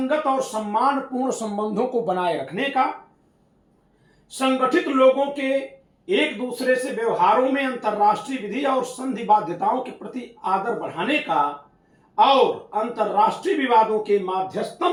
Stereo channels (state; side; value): identical; both; correlation 1.00